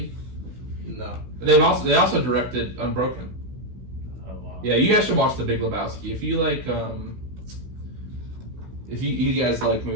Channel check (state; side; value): late; left; 16 ms